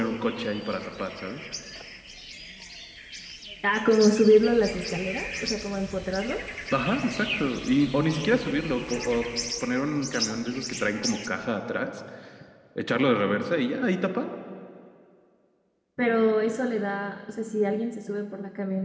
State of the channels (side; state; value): both; identical; correlation 1.00